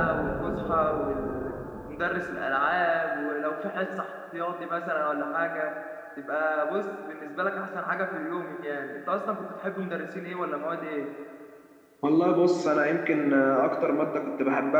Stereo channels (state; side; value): identical; both; correlation 1.00